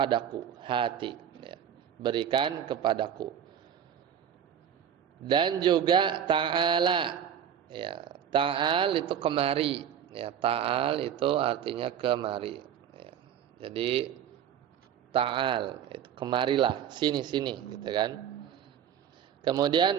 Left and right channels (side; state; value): left; quieter; 9.0 dB